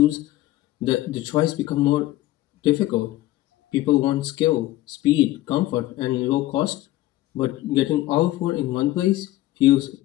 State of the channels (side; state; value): right; quieter; 16.0 dB